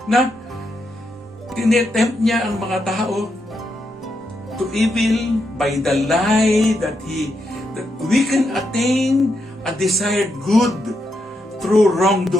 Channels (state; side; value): normal; both; correlation 0.82